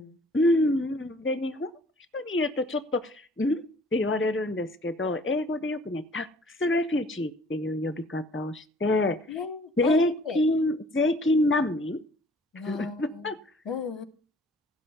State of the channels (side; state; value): both; normal; correlation 0.55